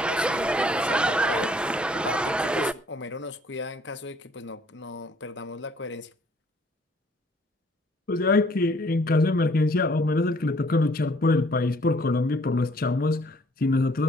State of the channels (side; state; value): both; normal; correlation 0.61